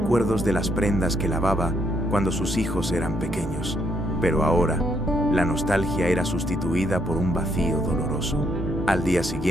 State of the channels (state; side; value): normal; both; correlation 0.74